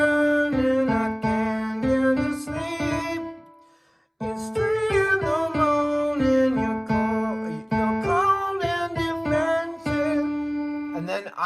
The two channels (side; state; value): both; identical; correlation 1.00